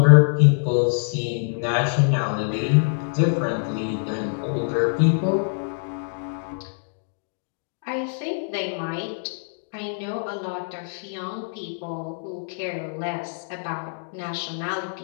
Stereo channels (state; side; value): silent; right; digital silence